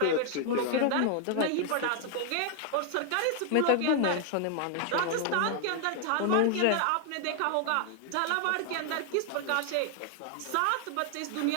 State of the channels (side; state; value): both; different; correlation 0.00